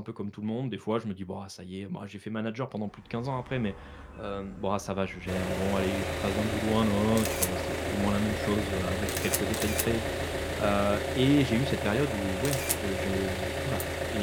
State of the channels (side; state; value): both; identical; correlation 1.00